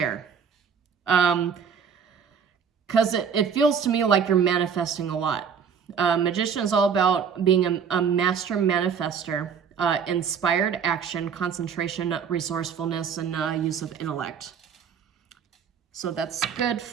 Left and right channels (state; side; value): quieter; left; 7.0 dB